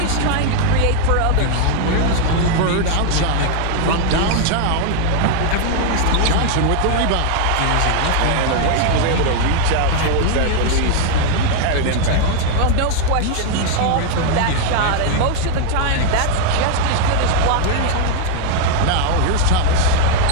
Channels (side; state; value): both; different; correlation 0.00